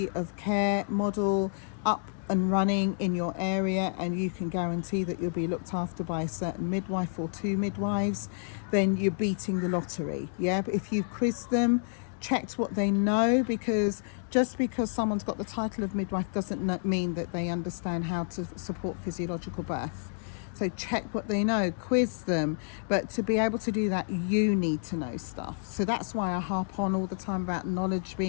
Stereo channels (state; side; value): silent; right; digital silence